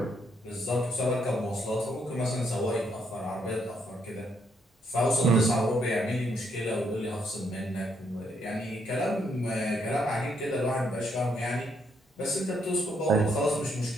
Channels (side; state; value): both; normal; correlation 0.74